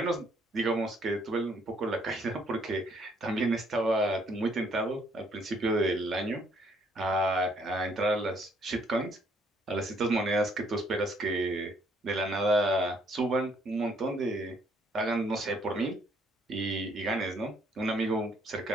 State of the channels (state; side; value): normal; both; correlation 0.66